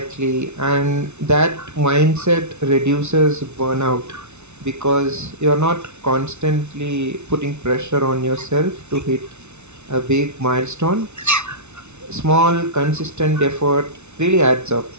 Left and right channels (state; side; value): late; left; 0.82 ms